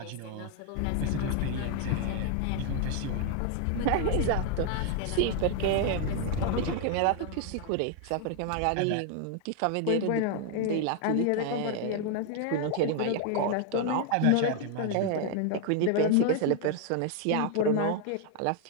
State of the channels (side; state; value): both; different; correlation 0.00